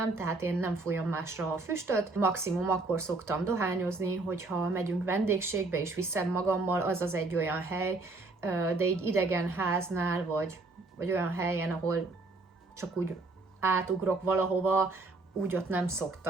tehát én nem fújom másra a füstöt. Maximum akkor szoktam dohányozni, hogyha megyünk vendégségbe és viszem magammal, az egy olyan hely, de így idegen háznál, vagy olyan helyen, ahol csak úgy átugrok valahova, úgy ott nem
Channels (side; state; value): left; quieter; 3.4 dB